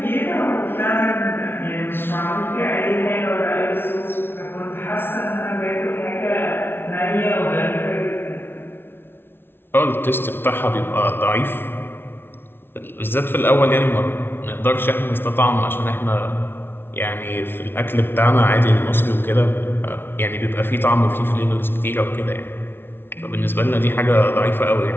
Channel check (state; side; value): late; right; 0.11 ms